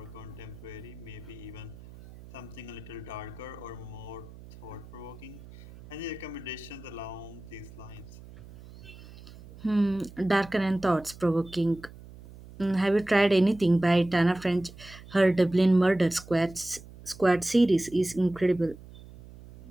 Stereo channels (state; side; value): noise; right; hum, 18 dB below the sound